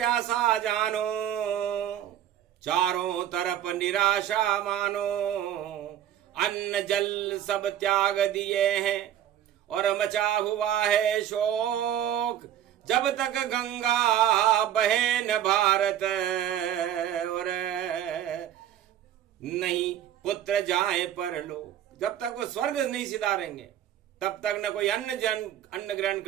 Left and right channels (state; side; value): quieter; left; 11.1 dB